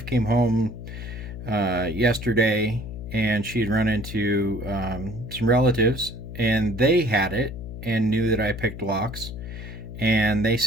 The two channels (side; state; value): left; noise; hum, 10 dB below the sound